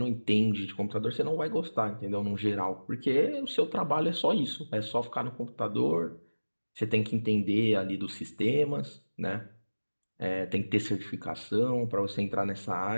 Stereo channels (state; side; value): inverted; both; correlation -1.00